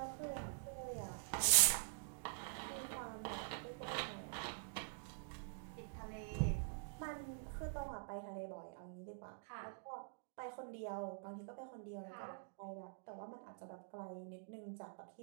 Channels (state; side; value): silent; left; digital silence